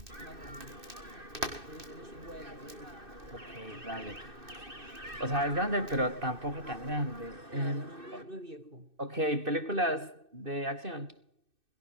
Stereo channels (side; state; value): left; late; 2.6 ms